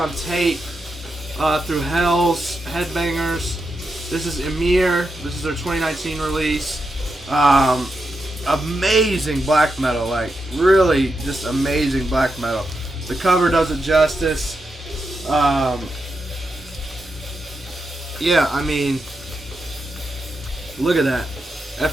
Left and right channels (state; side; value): normal; both; correlation 0.86